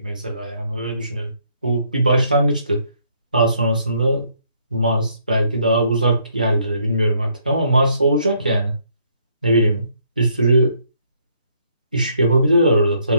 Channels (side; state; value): both; inverted; correlation -0.69